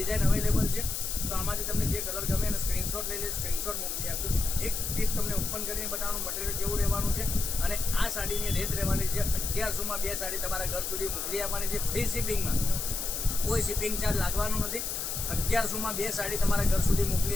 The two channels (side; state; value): left; noise; hiss, 3 dB below the sound